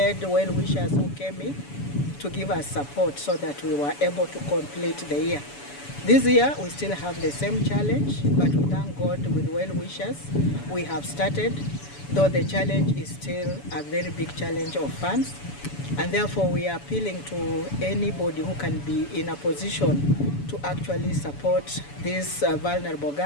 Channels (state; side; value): late; right; 7.0 ms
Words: well-wishers who came in to give us support so that we were able to complete the year. This year, we still have the same challenge, but we thank God with well-wishers. We have started, though the challenge is still a very big challenge of funds, and therefore we are appealing to anybody who can be in a position to actually support these vulnerable